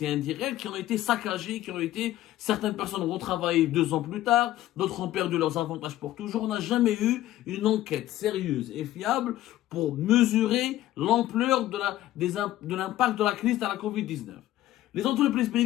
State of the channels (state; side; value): quieter; right; 14.4 dB